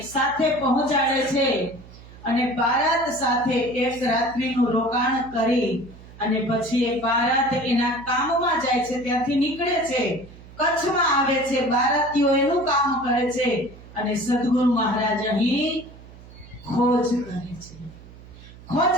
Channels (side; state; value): right; noise; hum, 19 dB below the sound